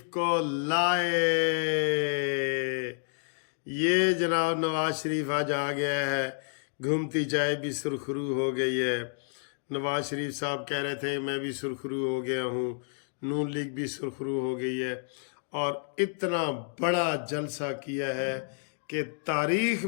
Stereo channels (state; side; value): silent; right; digital silence